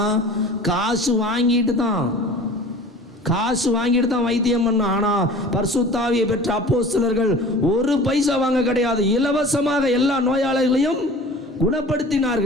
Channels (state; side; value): normal; both; correlation 0.42